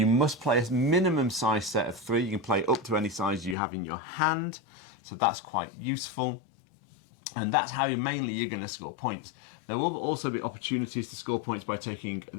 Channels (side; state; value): right; drops out; at 3.6 s